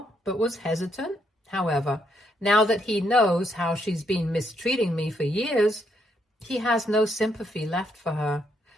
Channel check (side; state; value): both; normal; correlation 0.75